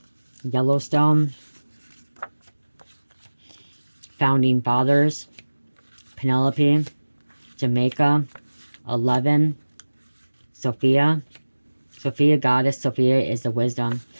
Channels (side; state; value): both; inverted; correlation -1.00